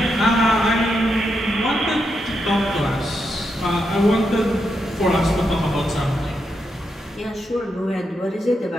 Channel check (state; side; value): normal; both; correlation 0.83